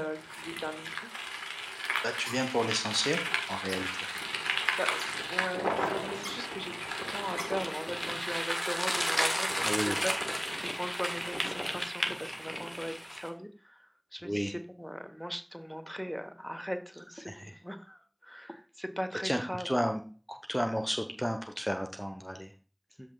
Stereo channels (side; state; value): both; identical; correlation 1.00